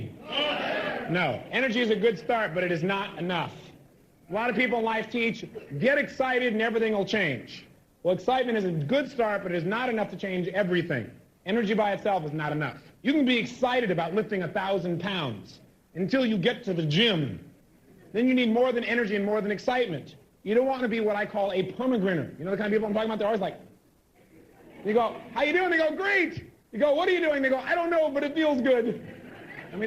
No. Energy is a good start, but it is not enough. A lot of people in life teach, get excited and everything will change. Well, excitement is a good start, but it is not enough to change everything. Energy by itself is not enough. You can be excited about lifting 1,000 pounds until you get to the gym. Then you need more than energy and more than excitement. You don't want to be what I call a permagrinner. You know the kind of people I'm talking about? They're always like, you go, how you doing? They go, great. You go, what are you doing? They go, I don't know, but it feels good. I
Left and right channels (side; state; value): both; identical; correlation 1.00